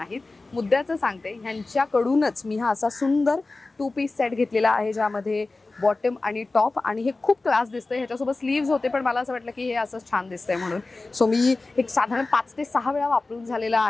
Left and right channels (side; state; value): right; quieter; 3.4 dB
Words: मुद्द्याचं सांगते, ह्यांच्याकडूनच मी हा असा सुंदर 2 पीस सेट घेतलेला आहे ज्यामध्ये बॉटम आणि टॉप आणि हे खूप क्लास दिसतंय. ह्याच्यासोबत स्लीव्स होते पण मला असं वाटलं की हे असंच छान दिसतंय म्हणून. सो मी एक साधारण 5 ते 6 वेळा वापरून झालेला